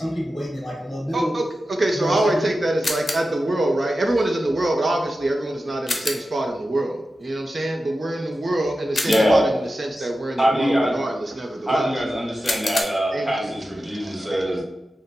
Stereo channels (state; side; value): normal; both; correlation 0.93